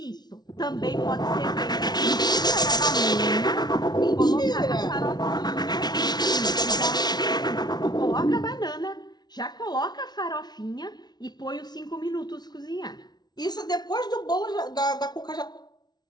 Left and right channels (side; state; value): right; late; 0.19 ms